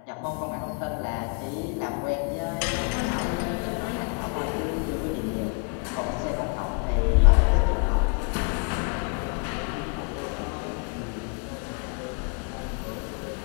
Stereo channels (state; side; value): quieter; right; 36.1 dB